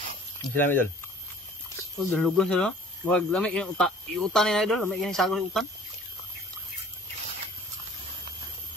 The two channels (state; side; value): normal; both; correlation 0.50